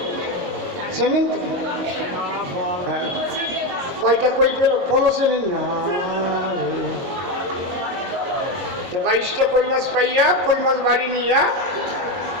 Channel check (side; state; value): left; late; 22 ms